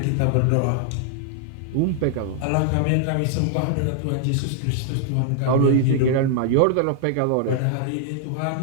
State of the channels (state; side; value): different; both; correlation 0.00